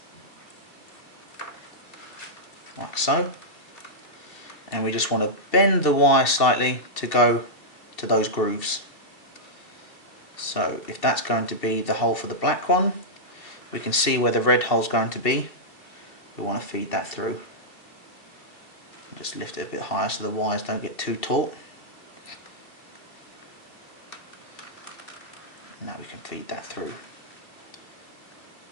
like so. And we just want to bend the wire slightly to go to those grooves. So if that's going to be the hole for the black one, we can see where the red hole is going to be. We want to feed that through. Just lift it a bit higher so the wires don't get too taut. Now we can feed that through.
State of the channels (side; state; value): right; late; 2.6 ms